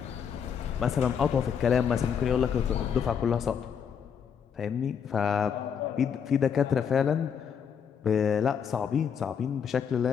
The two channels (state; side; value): quieter; right; 7.4 dB